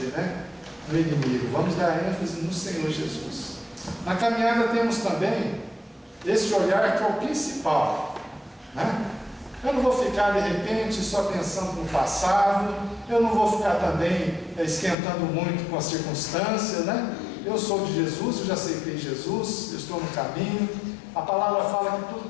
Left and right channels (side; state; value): right; drops out; at 15.0 s